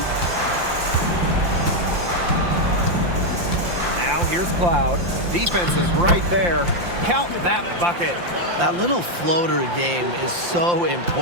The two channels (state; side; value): late; left; 5.7 ms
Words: Now here's Cloud. Defense is right there. Count that bucket. That little floater game is so